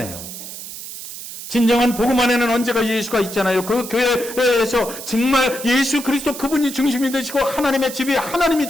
진정한 복음 안에는 언제가 예수가 있잖아요. 그 교회에서 정말 예수 그리스도 그분이 중심이 되시고, 하나님의 집이 하나님이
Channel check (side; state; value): right; noise; hiss, 11 dB below the sound